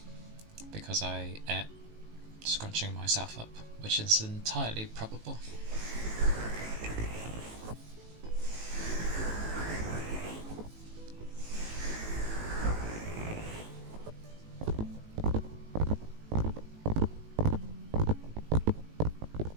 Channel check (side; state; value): left; late; 18 ms